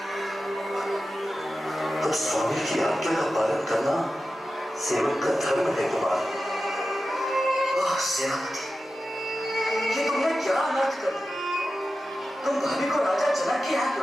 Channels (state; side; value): normal; both; correlation 0.93